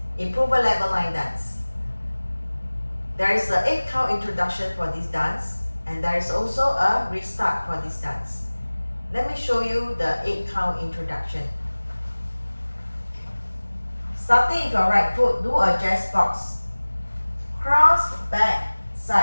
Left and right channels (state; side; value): inverted; both; correlation -1.00